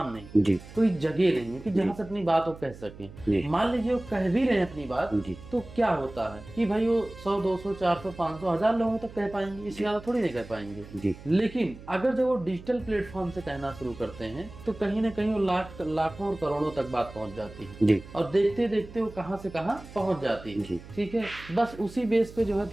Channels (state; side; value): noise; right; hum, 17 dB below the sound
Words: नहीं, कोई जगह नहीं है कि जहाँ से अपनी बात वो कह सकें। मान लीजिए वो कह भी रहे हैं अपनी बात, तो क्या होता है कि भाई वो 100, 200, 400, 500, 1000 लोगों तक कह पाएंगे, इससे ज्यादा थोड़ी नहीं कह पाएंगे। लेकिन अगर जब वो डिजिटल प्लेटफॉर्म से कहना शुरू करते हैं तो कहीं ना कहीं वो लाखों और करोड़ों तक बात पहुंच जाती है, और देखते देखते वो कहां से कहां पहुंच जाती है। ठीक है, बस उसी बेस पे जो है